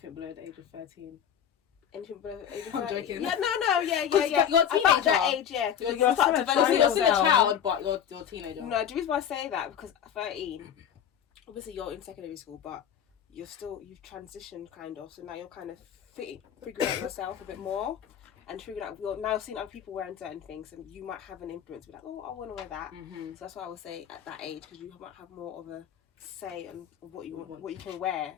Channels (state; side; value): quieter; right; 9.0 dB